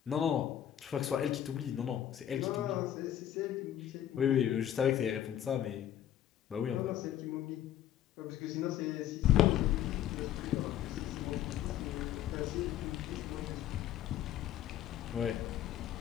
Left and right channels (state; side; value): quieter; right; 11.0 dB